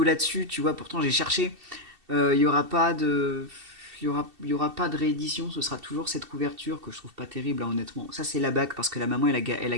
là-dessus, tu vois. Pourtant, j'ai cherché. Il y aura pas de. Il y aura pas de réédition, ce sera toujours cette couverture que je trouve pas terrible, hein, honnêtement. Ça, c'est la bague, parce que la maman, elle a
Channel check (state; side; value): late; left; 2.7 ms